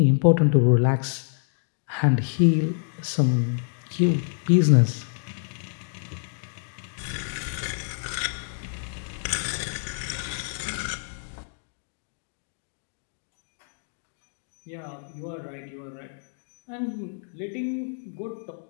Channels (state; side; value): silent; right; digital silence